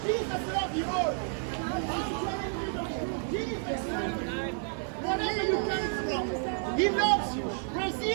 Jesus love you all. Jesus, wherever you come from, He loves you.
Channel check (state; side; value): silent; left; 56 dB below the other